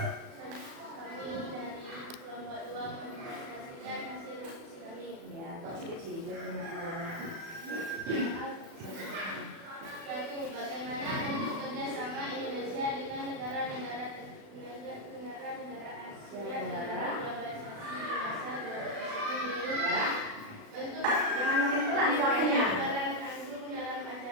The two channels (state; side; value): late; left; 36 ms